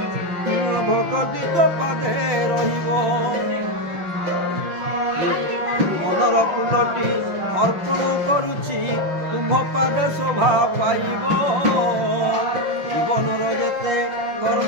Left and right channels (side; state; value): left; late; 5.6 ms